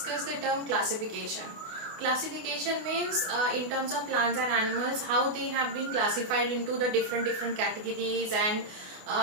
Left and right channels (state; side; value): late; left; 28 ms